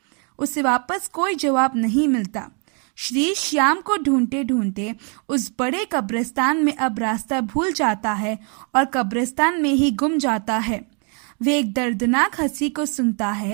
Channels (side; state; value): left; quieter; 38.0 dB